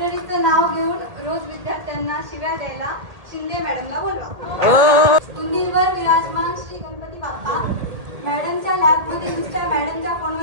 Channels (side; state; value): left; late; 1.8 ms